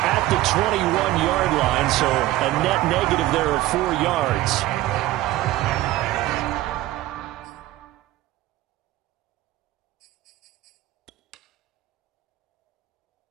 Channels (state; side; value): quieter; left; 16.1 dB